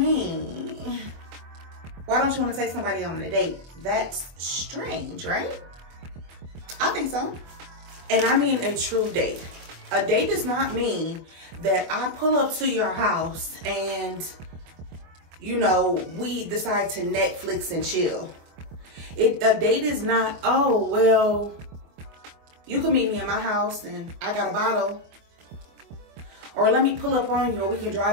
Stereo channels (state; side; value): late; left; 24 ms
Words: Why don't you want to take somebody on a date? That's strange, right? I think so. And I mean a true date. A date does not mean that I pull up to your house and, you know, we decide to Netflix and chill. A date is not, oh, well, you can meet me in my house and I got a bottle. Or let me pull up on you or we can